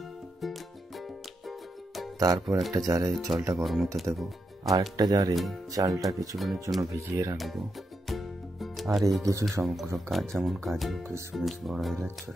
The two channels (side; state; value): both; normal; correlation 0.84